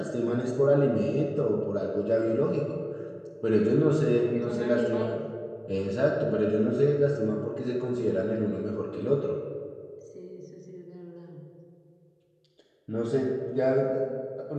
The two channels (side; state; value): both; identical; correlation 1.00